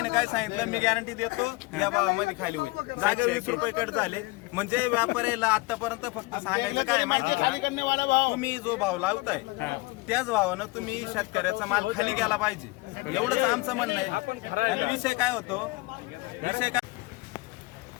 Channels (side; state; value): right; quieter; 23.7 dB